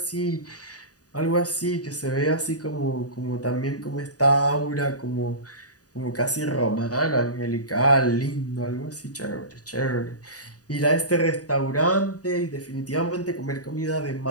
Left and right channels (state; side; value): late; right; 0.68 ms